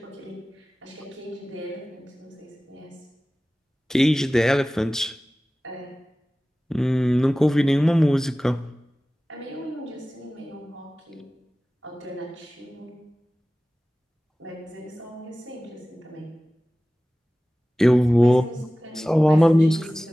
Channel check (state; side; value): normal; both; correlation 0.97